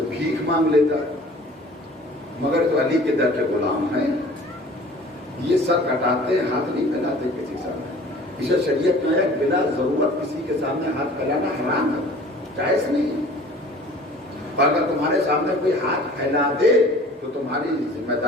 بھیک مانگ لیتا، مگر تو علی کے در کے غلام ہیں، یہ سر کٹاتے ہاتھ نہیں پھیلاتے کسی سامنے، اسے شریعت میں ہے بلا ضرورت کسی کے سامنے ہاتھ پھیلانا حرام ہے، جائز نہیں ہے۔ اگر تمہارے سامنے کوئی ہاتھ پھیلا دے تو تمہاری ذمہ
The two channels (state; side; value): normal; both; correlation 0.47